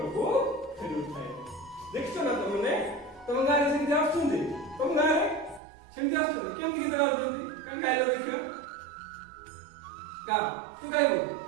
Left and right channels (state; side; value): drops out; left; at 5.6 s